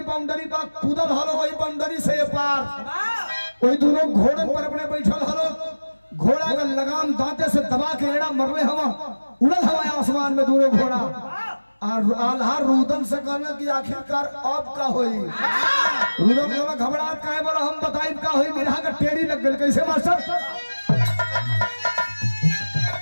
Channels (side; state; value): both; inverted; correlation -1.00